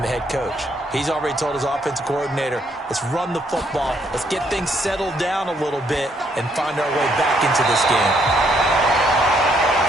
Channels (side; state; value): both; normal; correlation 0.71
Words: the head coach. He's already told his offensive coordinator, let's run the football, let's get things settled down a little bit and find our way back into this game.